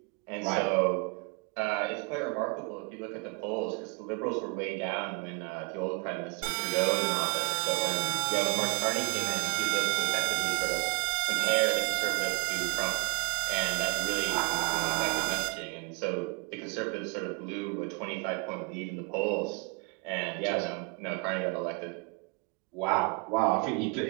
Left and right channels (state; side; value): quieter; left; 31.5 dB